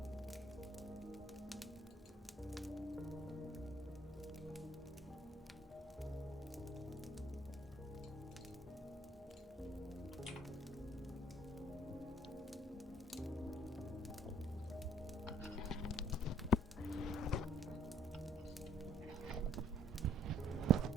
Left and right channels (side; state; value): both; normal; correlation 0.60